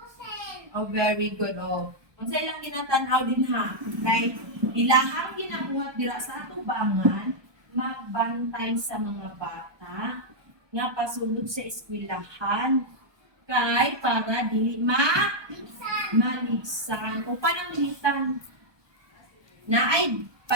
Very good. Unsay lang ginatanaw din ha? Like, ilahang ginabuhat dira sa atubangan, magbantay sa mga bata, nga pasulod sa eskwelahan, kay para dili maligsan. O pananglitan, na ay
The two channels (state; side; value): late; left; 1.2 ms